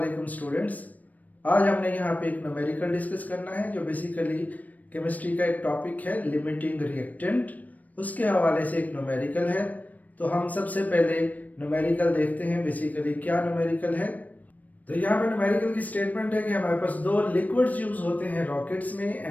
स्टूडेंट्स। आज हमने यहाँ पे एक न्यूमेरिकल डिस्कस करना है जो बेसिकली केमिस्ट्री का एक टॉपिक है लिमिटिंग रिएक्टेंट। उसके हवाले से एक न्यूमेरिकल है। तो हम सबसे पहले न्यूमेरिकल देखते हैं बेसिकली क्या न्यूमेरिकल है। तो यहाँ पे न्यूमेरिकल की स्टेटमेंट है कि हमारे पास दो लिक्विड्स यूज होते हैं रॉकेट्स में,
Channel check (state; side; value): late; right; 0.075 ms